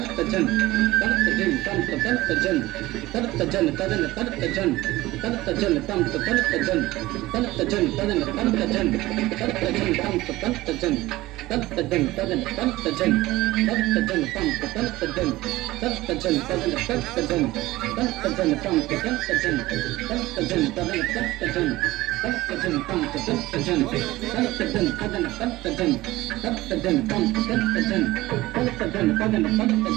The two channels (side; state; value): left; quieter; 18.2 dB